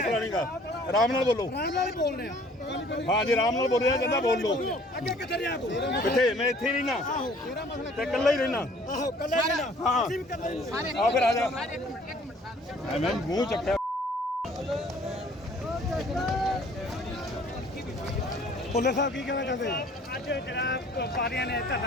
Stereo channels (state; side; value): normal; both; correlation 0.55